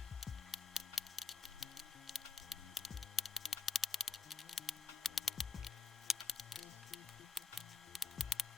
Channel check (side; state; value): right; quieter; 4.2 dB